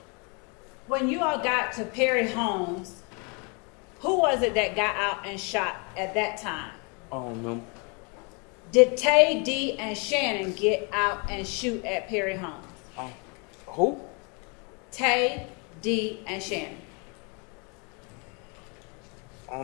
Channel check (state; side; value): quieter; right; 33.4 dB